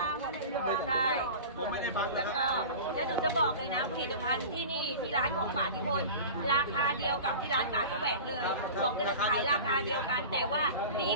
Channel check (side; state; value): both; inverted; correlation -0.35